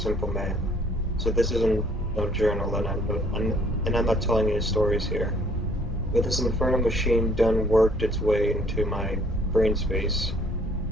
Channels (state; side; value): normal; both; correlation 0.60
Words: man. So this isn't no journal, and I'm not telling any stories here. But this infernal machine done worked its way into my brain space,